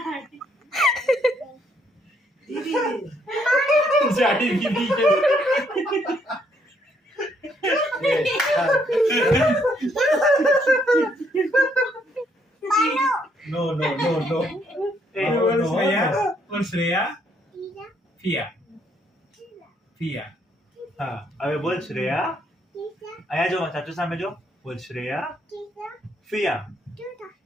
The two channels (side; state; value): both; normal; correlation 0.71